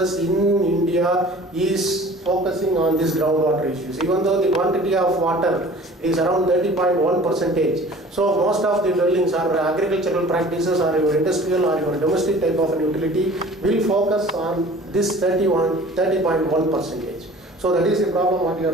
in India is focusing on these groundwater issues, even though the quantity of water is around 30.1%. So most of the dwellings or agricultural practices or your industrial or your domestic type of an utility will focus on this 30.1%. So that is the problem what you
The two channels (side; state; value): both; normal; correlation 0.46